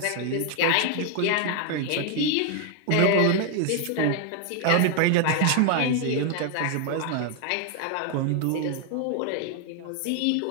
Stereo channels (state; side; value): different; both; correlation 0.00